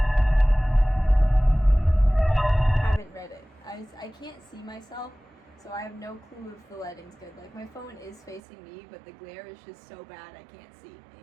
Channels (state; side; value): drops out; left; at 8.4 s